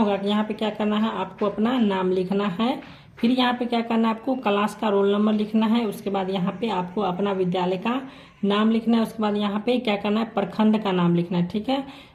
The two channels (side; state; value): both; identical; correlation 1.00